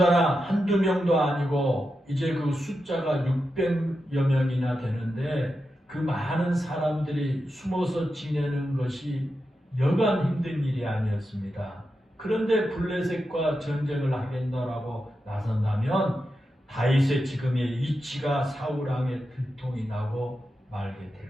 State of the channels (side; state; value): both; normal; correlation 0.89